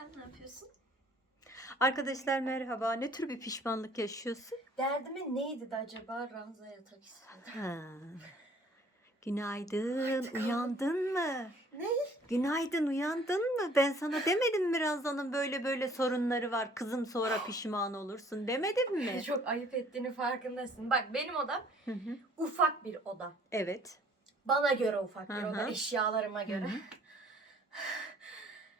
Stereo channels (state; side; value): normal; both; correlation 0.56